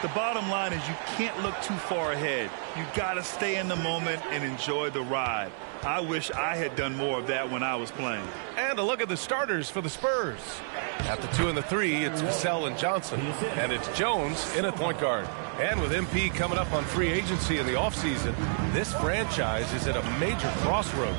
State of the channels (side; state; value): left; silent; 58 dB below the other